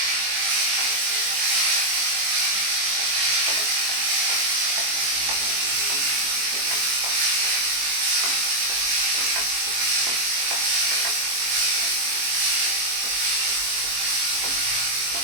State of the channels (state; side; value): late; left; 22 ms